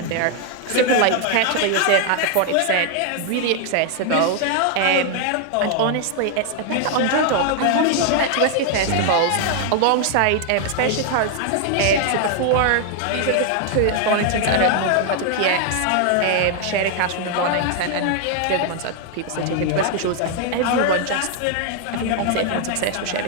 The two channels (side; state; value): both; different; correlation 0.00